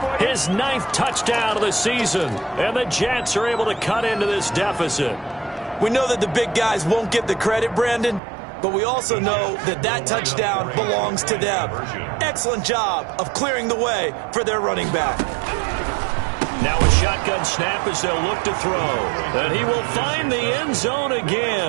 his 9th touchdown of the season. And the Jets are able to cut into this deficit. We know that the big guys won't get the credit, Brandon, but we also know that that touchdown belongs to them. Excellent job of clearing the way for their running back. Now a shotgun snap as they'll look to throw. And he will find the end zone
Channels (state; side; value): drops out; left; at 8.2 s